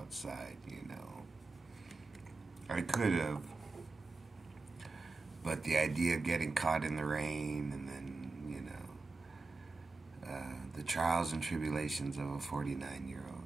I could have, but the idea of getting caught in the rain and then the trials and tribulations of a 49-year-old.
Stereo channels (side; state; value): left; quieter; 3.7 dB